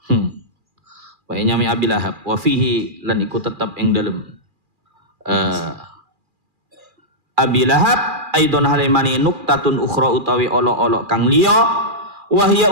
Wa nyamai abi lahab wa fihi lan iku tetap ing dalem abi lahab aidon halimani nuktatun ukhra utawi olok-olok kang liya wa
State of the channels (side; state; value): left; late; 2.4 ms